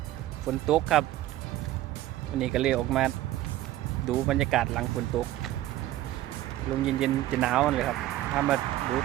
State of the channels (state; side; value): quieter; left; 14.7 dB